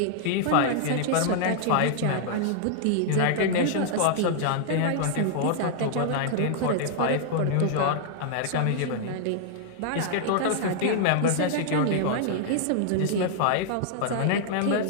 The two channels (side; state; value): both; different; correlation -0.01